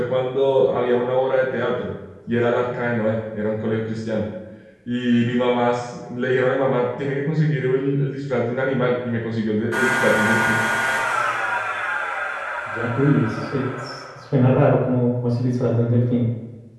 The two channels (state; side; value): identical; both; correlation 1.00